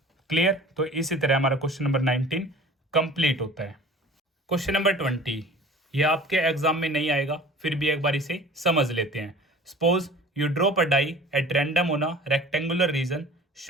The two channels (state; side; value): normal; both; correlation 0.43